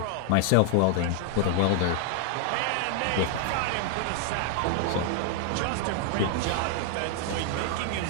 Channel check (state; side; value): different; both; correlation 0.00